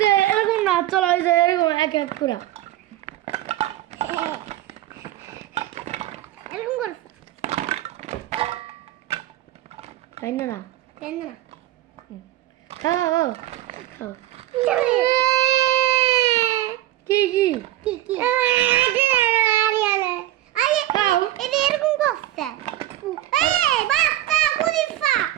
যাবে এরকম না চলো এরকম এক এক করে এরকম কর তাই না কেন না খাও খাও কি কি কি কি এটা এরকম করতে এই বাস্তা পুলিশা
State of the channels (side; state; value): left; quieter; 14.2 dB